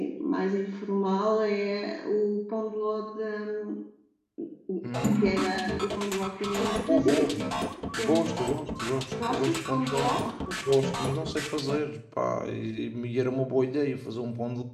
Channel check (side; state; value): both; identical; correlation 1.00